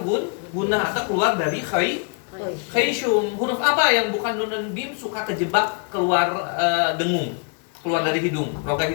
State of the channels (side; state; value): right; quieter; 37.3 dB